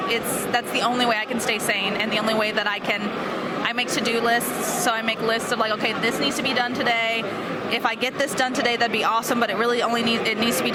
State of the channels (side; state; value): both; identical; correlation 1.00